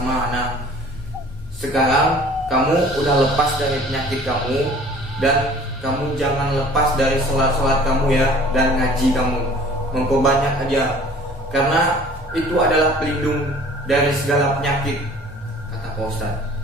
Ana. Sekarang kamu udah lepas dari penyakit kamu, dan kamu jangan lepas dari sholat-sholat kamu ya, dan ngaji kamu, memperbanyak aja, karena itu adalah pelindung dari segala penyakit, kata Pak Ustadz.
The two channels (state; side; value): normal; both; correlation 0.49